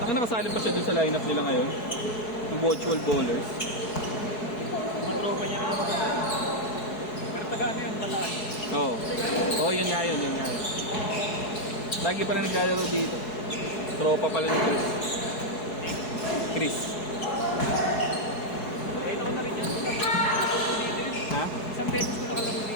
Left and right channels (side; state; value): right; late; 4.7 ms